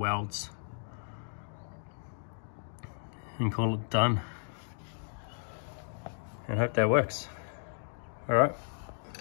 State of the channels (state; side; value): silent; right; digital silence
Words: and call it done. And hope that works. Alright.